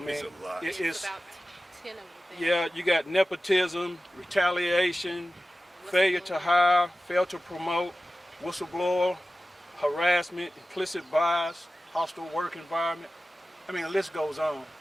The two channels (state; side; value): normal; both; correlation 0.95